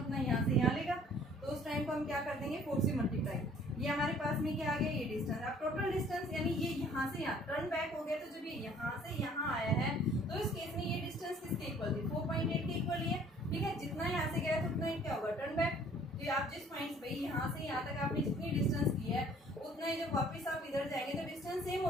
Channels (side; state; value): both; normal; correlation 0.56